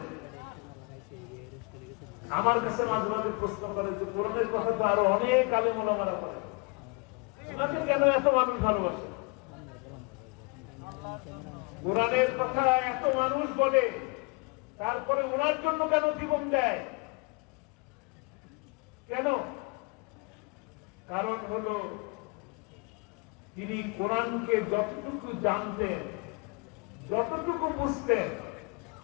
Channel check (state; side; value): quieter; right; 29.3 dB